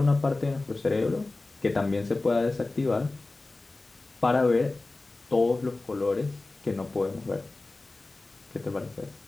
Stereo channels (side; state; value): right; quieter; 3.2 dB